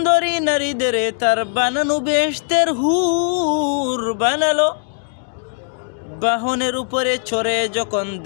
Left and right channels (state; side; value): silent; right; digital silence